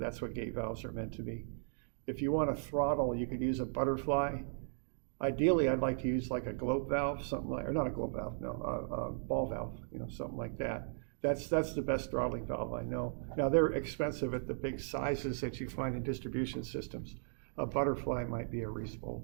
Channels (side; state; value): left; silent; digital silence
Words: what gate valves are meant to be. If you want to throttle, you could use a butterfly Ideally, I'd like to use like a globe valve, something like, or not a globe valve, no, a ball valve, something like that. That's the best throttling valve I know. Now, they're expensive at the big sizes that you find in distribution systems. A butterfly might be a